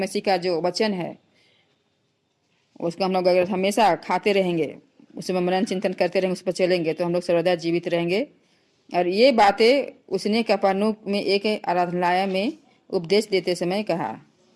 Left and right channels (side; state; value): both; identical; correlation 1.00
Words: का जो वचन है उसको हम लोग अगर हमेशा खाते रहेंगे, उसमें मनन चिंतन करते रहेंगे, उस पर चलेंगे, तो हम लोग सर्वदा जीवित रहेंगे। और ये बातें उसने कफरनहूम में एक आराधनालय में उपदेश देते समय कहा।